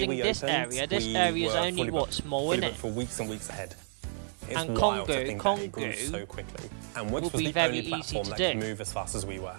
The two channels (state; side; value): silent; left; digital silence